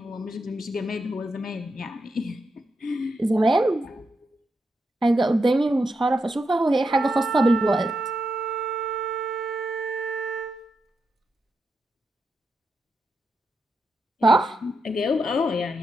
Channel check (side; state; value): both; normal; correlation 0.85